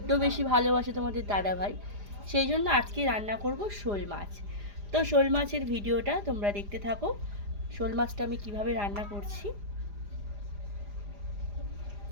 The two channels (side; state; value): left; late; 4.9 ms